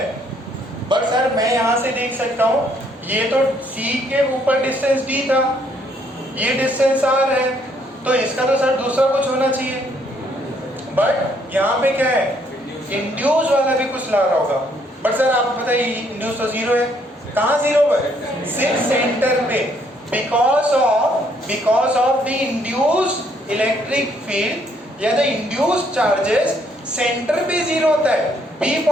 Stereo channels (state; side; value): normal; both; correlation 0.68